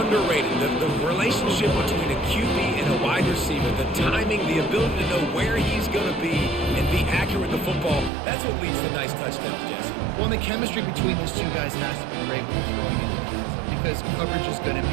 The relationship between a QB and a wide receiver, the timing, the ability to know where he's going to be and be accurate with the football, that's what leads to nice touchdowns, Jesse. Well, the chemistry between these two guys has to be great when you're throwing into the end zone because coverage is going to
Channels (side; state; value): left; drops out; at 8.1 s